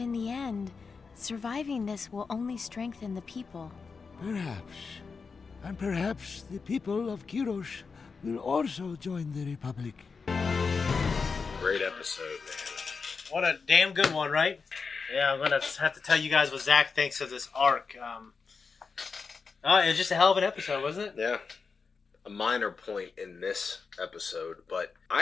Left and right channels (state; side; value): quieter; right; 5.0 dB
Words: the end, surviving this will only strengthen the people. Perhaps. And perhaps the people of Kiros will also join the Republic. Great episode, man. What a damn good one, right? Yeah, I'm gonna have to tell you guys what Zach thinks of this arc. It was just a hell of an episode, wasn't it? Yeah. A minor point in this episode, but